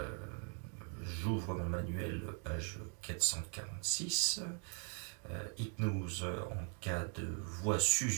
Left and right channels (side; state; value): left; quieter; 39.7 dB